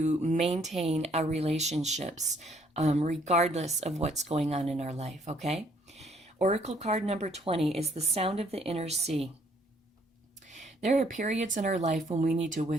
maintain our relationships regardless of what's going on in our life, okay? Oracle card number 20 is the sound of the inner sea. There are periods in our life when we need to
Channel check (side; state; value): both; normal; correlation 0.65